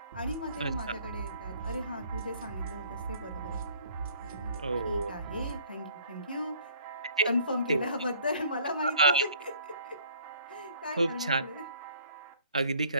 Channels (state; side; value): inverted; both; correlation -0.57